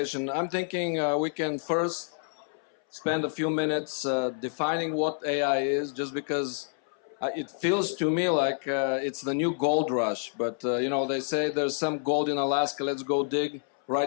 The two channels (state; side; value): silent; right; 59 dB below the other